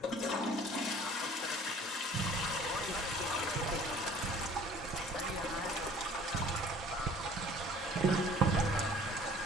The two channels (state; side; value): normal; both; correlation 0.50